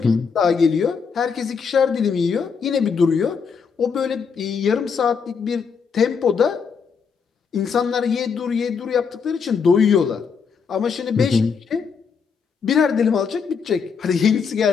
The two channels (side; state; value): right; quieter; 6.0 dB